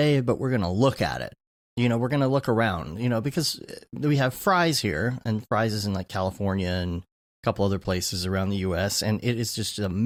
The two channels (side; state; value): both; identical; correlation 1.00